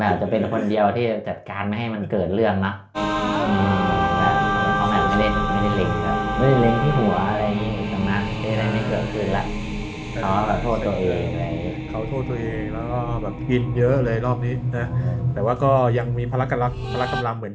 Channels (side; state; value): both; identical; correlation 1.00